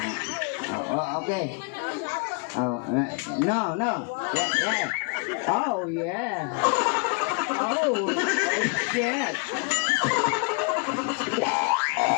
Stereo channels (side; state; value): right; quieter; 33.3 dB